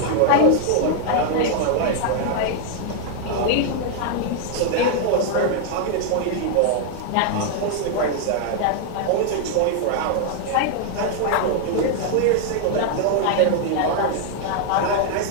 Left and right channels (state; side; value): different; both; correlation 0.00